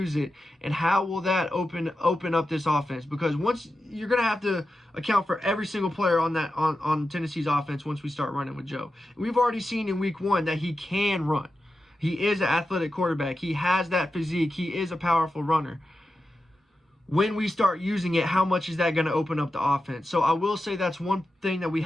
it. And how will that open up this offense? Because once you're going to have to account for every single player on Tennessee's offense once we start running with Joe. We've already seen in week 1 that he can run. He is an athletic quarterback. He has that physique. He is a powerful runner. when we start using it, how much is that going to open up the offense? So I will say that's one thing that we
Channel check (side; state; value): both; normal; correlation 0.91